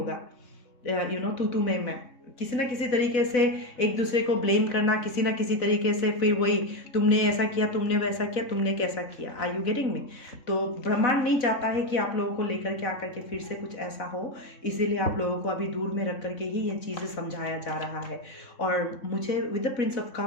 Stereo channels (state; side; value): late; right; 3.7 ms